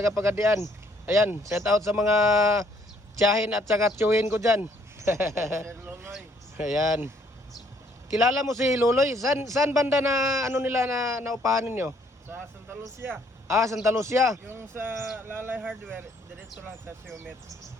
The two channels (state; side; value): normal; both; correlation 0.65